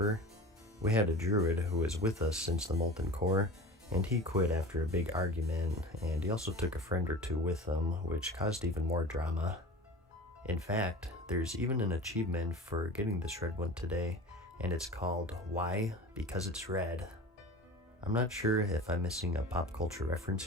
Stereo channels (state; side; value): normal; both; correlation 0.35